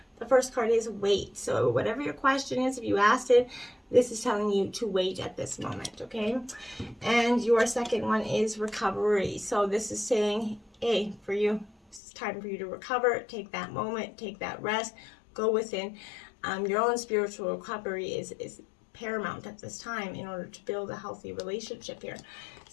the first card is wait. So whatever your question is, if you asked it, this is telling you to wait at this moment, okay? And your second one is recovery. So this is saying, hey, for you, it's time for you to recover. Take that moment, take that rest, go within. Your own spiritual recovery is paramount at this time in order to build a healthy relationship here.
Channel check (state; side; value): drops out; right; at 12.0 s